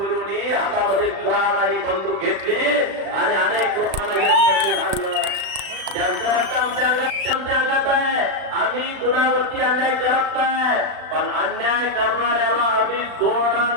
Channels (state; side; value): late; left; 36 ms